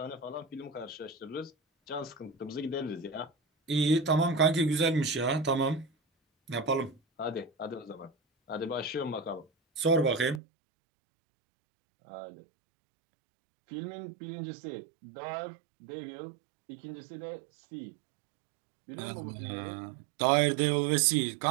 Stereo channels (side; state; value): left; drops out; at 10.4 s